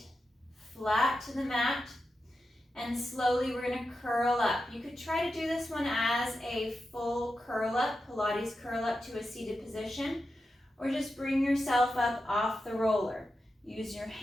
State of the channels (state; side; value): normal; both; correlation 0.90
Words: flat to the mat, and slowly we're going to curl up. You could try to do this one as a full curl up, Pilates curl up to a seated position, or just bring yourself up off the roller. Use your